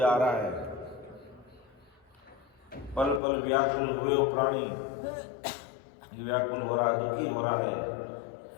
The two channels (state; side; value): drops out; right; at 3.2 s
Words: आ रहा है, पल पल व्याकुल हुए हो प्राणी, व्याकुल हो रहा है, दुखी हो रहा है।